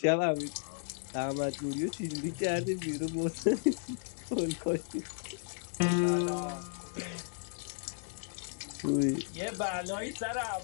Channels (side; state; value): right; silent; digital silence